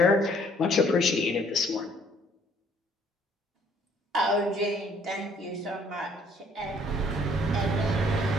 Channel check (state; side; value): normal; both; correlation 0.61